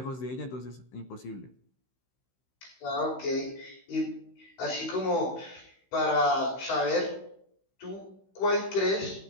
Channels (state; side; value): late; right; 16 ms